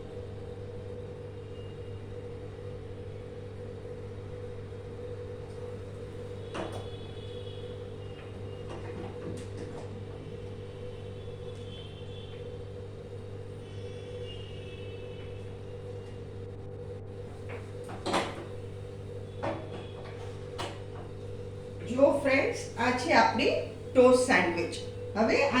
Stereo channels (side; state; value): both; identical; correlation 1.00